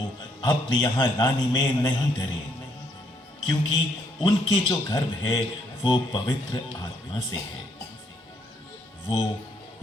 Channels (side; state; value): both; normal; correlation 0.71